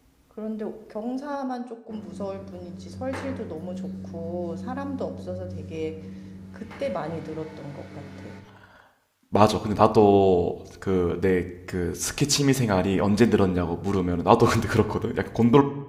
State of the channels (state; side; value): identical; both; correlation 1.00